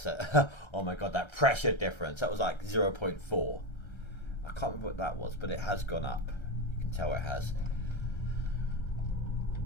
a oh my god, that pressure difference. That was like 0.4. I can't remember what that was, but it has gone up. You can tell it has.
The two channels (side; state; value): right; late; 1.3 ms